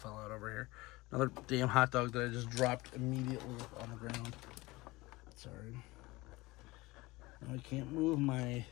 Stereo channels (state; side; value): quieter; right; 21.3 dB